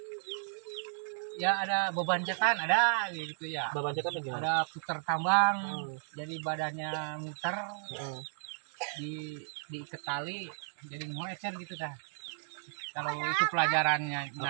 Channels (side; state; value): left; silent; digital silence